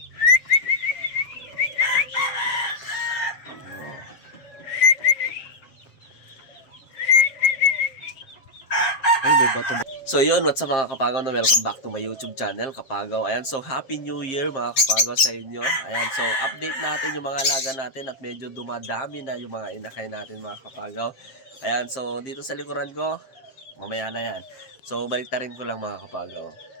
Ay, may bato ba? So yun, what's up mga kapagaw na welcome back to my YouTube channel, Kapagaw. Ayan, so Happy New Year mga kapagaw sa inyo. Ayan, so update natin yung mga alaga natin at medyo dumadami na yung mga inakay natin mga kapagaw. Ayan, so dito sa likuran ko, mamaya na yan. So baliktarin ko lang mga kapagaw.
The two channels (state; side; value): late; right; 7.5 ms